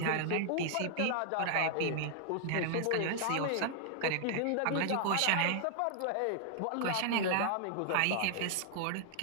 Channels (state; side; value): different; both; correlation 0.00